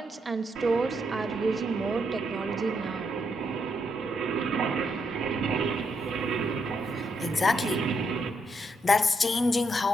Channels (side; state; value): both; normal; correlation 0.78